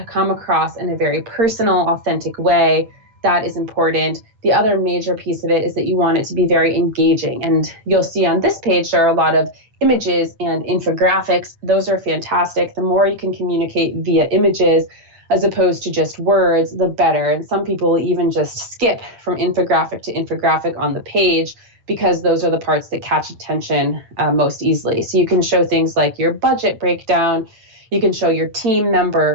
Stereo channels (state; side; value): late; left; 8.9 ms